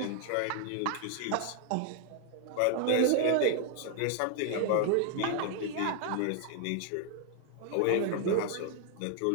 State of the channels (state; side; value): different; both; correlation 0.00